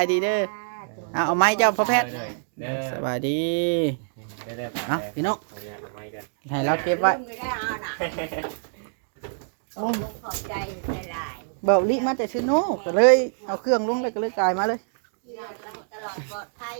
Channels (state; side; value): silent; left; digital silence